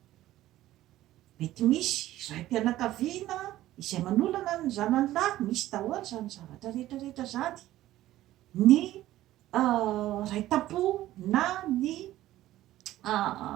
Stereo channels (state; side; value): quieter; left; 14.7 dB